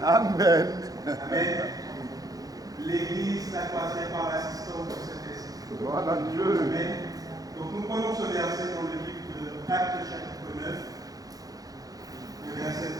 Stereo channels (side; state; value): left; late; 0.18 ms